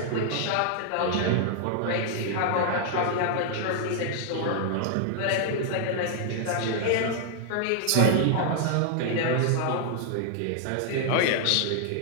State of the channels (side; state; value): both; different; correlation 0.00